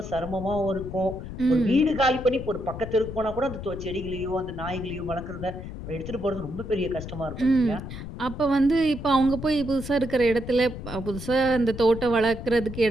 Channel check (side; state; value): left; noise; rumble, 9 dB below the sound